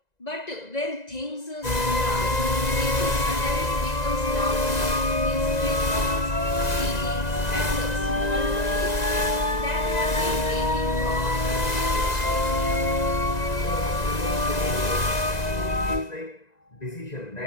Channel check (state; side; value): late; right; 1.9 ms